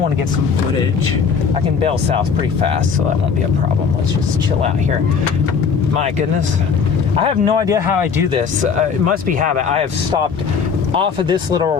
want to get some footage. I can bail south pretty fast, so that won't be a problem. Let's just chill out here. My goodness. I have no idea how I do this. It must be habit. I have stopped off of this little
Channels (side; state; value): right; quieter; 6.0 dB